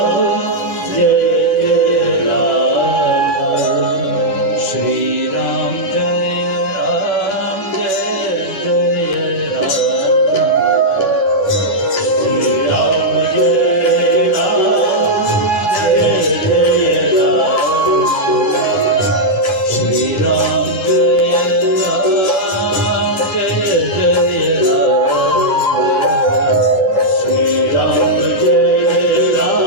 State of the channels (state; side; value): late; right; 11 ms